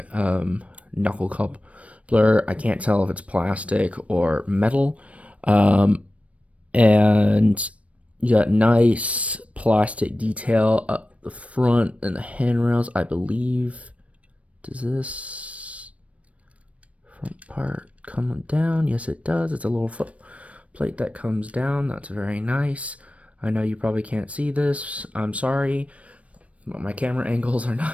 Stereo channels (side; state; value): left; late; 0.064 ms